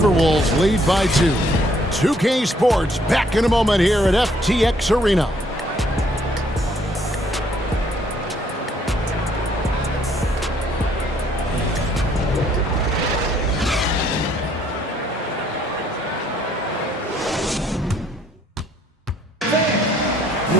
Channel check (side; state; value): both; normal; correlation 0.65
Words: lead by 2. 2K Sports back in a moment here at FTX Arena.